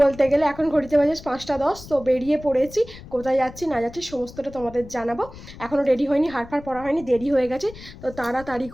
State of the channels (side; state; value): left; noise; rumble, 17 dB below the sound